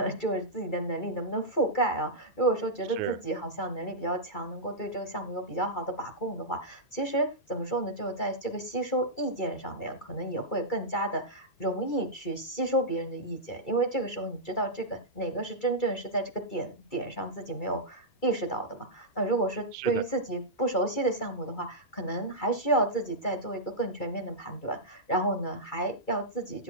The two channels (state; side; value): late; right; 2.3 ms